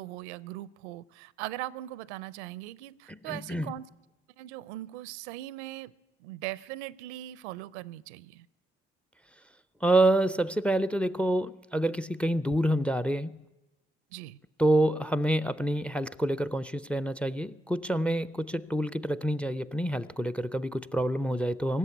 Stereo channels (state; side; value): normal; both; correlation 0.84